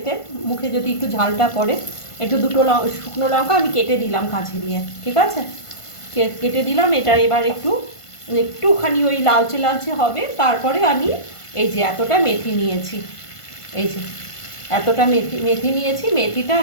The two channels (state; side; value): late; right; 1.5 ms